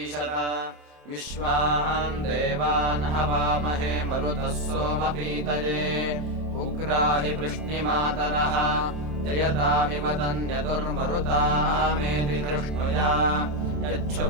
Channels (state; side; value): late; left; 27 ms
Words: विश्वान् देवान् हवामहे मरुतः सोमपीतये उग्राहि वृष्णिमातरः जयतामिव तन्यतुर्मरुतामेति धृष्णुया